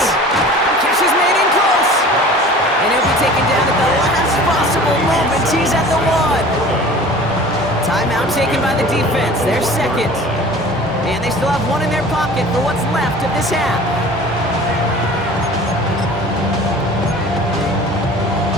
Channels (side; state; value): both; normal; correlation 0.43